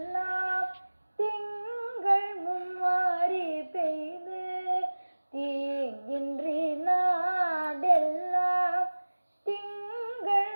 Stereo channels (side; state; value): both; inverted; correlation -1.00